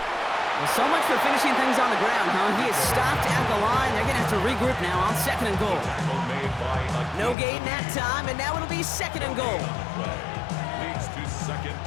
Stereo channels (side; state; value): right; drops out; at 7.4 s